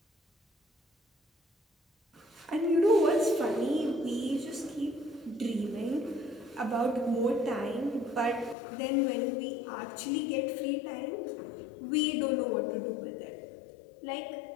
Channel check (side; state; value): right; drops out; at 8.6 s